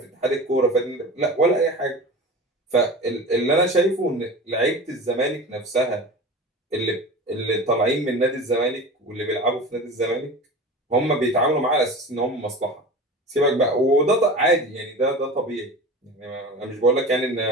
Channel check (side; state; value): both; normal; correlation 0.33